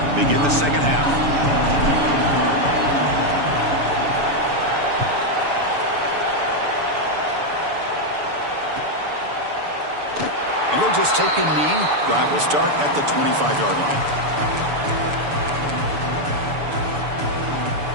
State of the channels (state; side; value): late; left; 6.9 ms